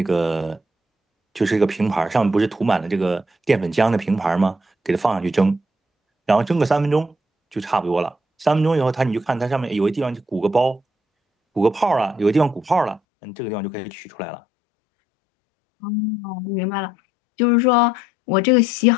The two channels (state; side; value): drops out; right; at 13.0 s